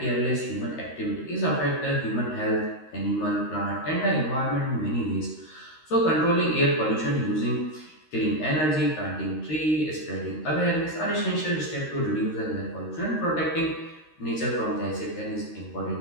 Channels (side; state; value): right; late; 13 ms